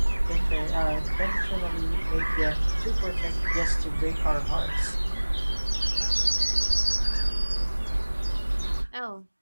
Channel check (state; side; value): inverted; both; correlation -1.00